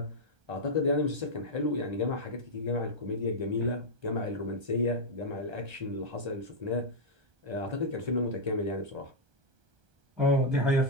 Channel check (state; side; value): late; left; 1.2 ms